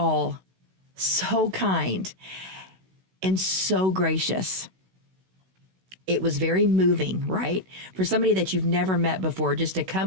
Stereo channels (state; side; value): late; left; 16 ms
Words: so kind and so gracious. It was very moving, right? For somebody that you've never met before, just to